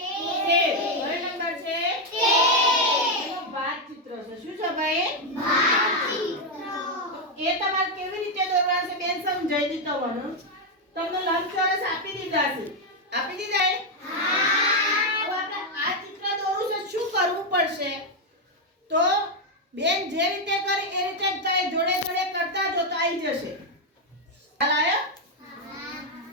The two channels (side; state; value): both; normal; correlation 0.03